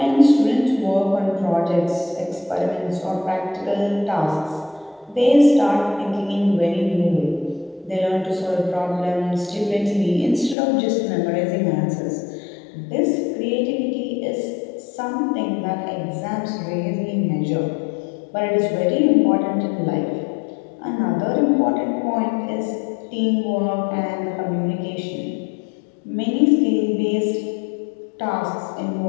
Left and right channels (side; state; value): right; drops out; at 10.6 s